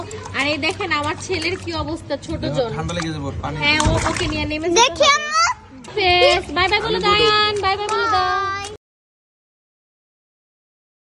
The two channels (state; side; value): identical; both; correlation 1.00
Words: আর এই দেখেন আমার ছেলের কি অবস্থা, ছোট জন। ঠান্ডা লেগে যাবে, পানি। হ্যাঁ, ওকে নিয়ে নেমে দেখি আম্মু। বাই বাই বলে দাও।